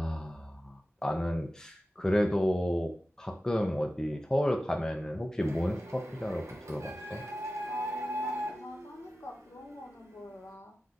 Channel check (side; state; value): both; normal; correlation 0.95